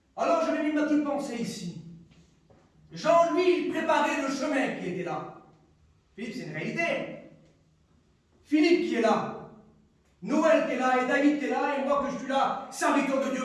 Alors je vais mis ma petite pensée ici. Jean, lui, il préparait le chemin qui était là. Philippe, c'est une réalité. Philippe qui est là. Noël qui est là, et David qui est là, et moi que je suis là, serviteur de Dieu.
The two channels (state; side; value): identical; both; correlation 1.00